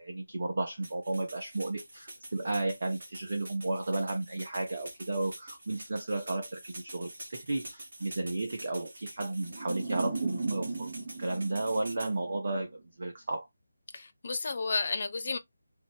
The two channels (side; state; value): both; inverted; correlation -0.93